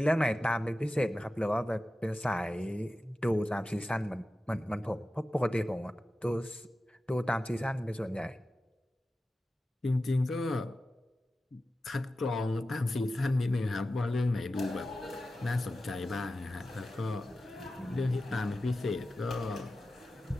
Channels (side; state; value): both; normal; correlation 0.94